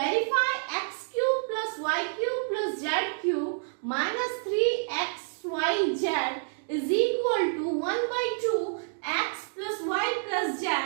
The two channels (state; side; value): silent; left; digital silence